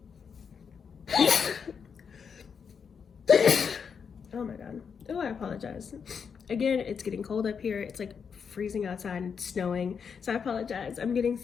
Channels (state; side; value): quieter; right; 6.5 dB